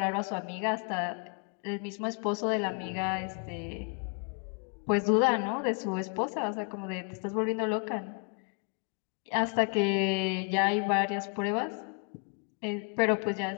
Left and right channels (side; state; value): right; quieter; 37.5 dB